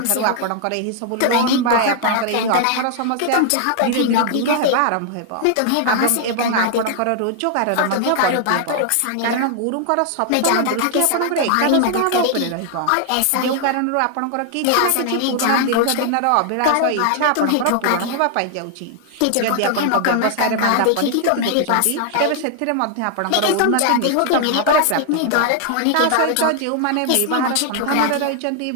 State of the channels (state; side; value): different; both; correlation 0.00